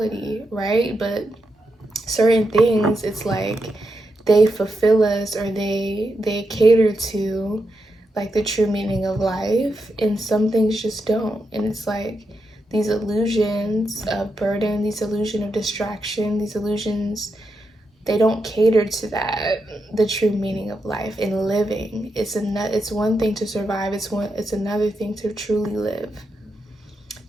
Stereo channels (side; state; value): both; normal; correlation 0.85